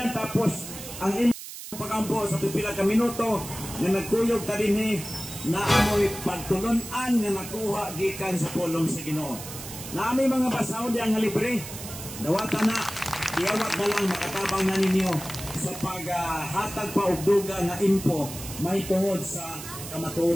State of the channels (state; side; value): noise; right; hiss, 11 dB below the sound